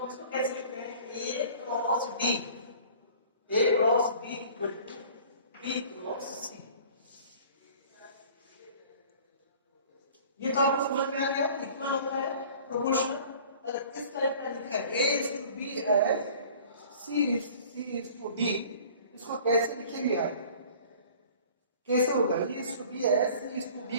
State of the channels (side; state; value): both; inverted; correlation -0.48